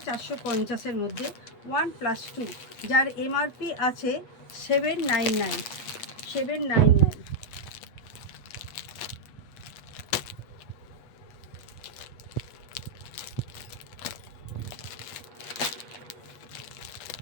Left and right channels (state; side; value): late; right; 8.2 ms